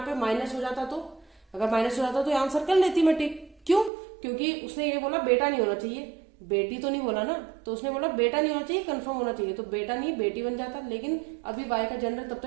पे माइनस हो जाता तो, अगर माइनस हो जाता तो आंसर कर लेती मैं टिक। क्यों? क्योंकि उसने ये बोला बेटा नहीं होना चाहिए, बेटी तो नहीं बोला ना, तो उसने बोला बेटा नहीं होना चाहिए, कंफर्म होना चाहिए, तो बेटा नहीं बेटी बन जाता। लेकिन अभी y का जेंडर तब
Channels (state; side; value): drops out; left; at 3.9 s